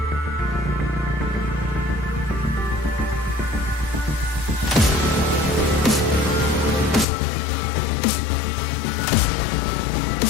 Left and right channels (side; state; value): right; drops out; at 7.1 s